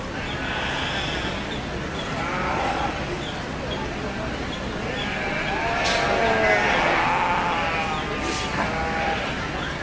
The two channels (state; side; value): identical; both; correlation 1.00